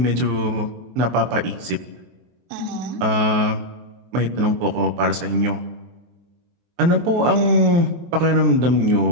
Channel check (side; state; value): left; late; 23 ms